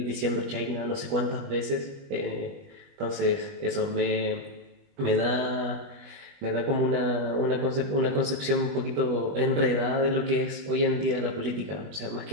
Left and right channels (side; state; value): left; late; 20 ms